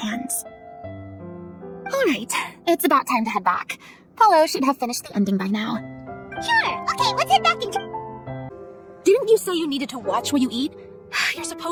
Alright, it's about time to head back. Paulo should have finished the ending by now. Sure, okay, let's head back and... Didn't you say you needed to watch what you eat? You're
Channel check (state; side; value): identical; both; correlation 1.00